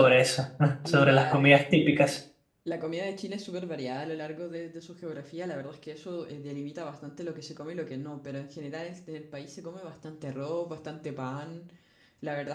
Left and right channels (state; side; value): identical; both; correlation 1.00